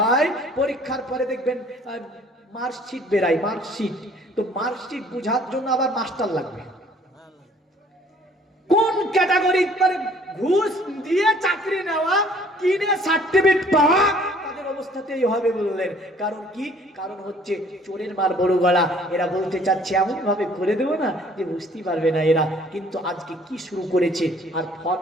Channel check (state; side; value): normal; both; correlation 0.57